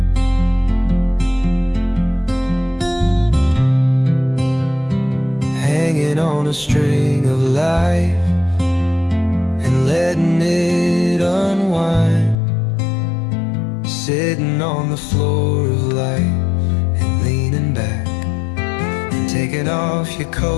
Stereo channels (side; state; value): right; drops out; at 12.4 s